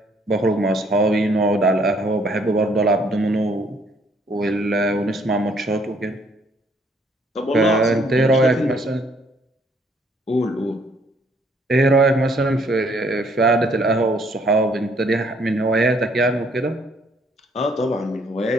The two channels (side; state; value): both; normal; correlation 0.65